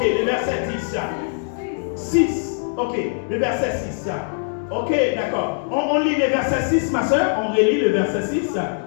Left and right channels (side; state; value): right; silent; digital silence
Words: le verset 10. 6. Ok, le verset 6. Ok, d'accord. On lit le verset 6, ma soeur. On relit le verset 6.